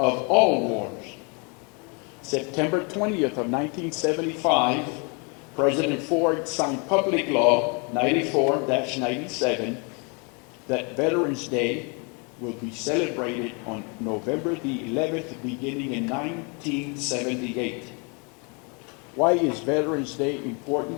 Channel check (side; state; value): right; quieter; 33.6 dB